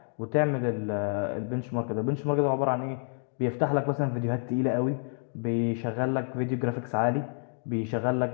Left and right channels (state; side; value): silent; right; 59 dB below the other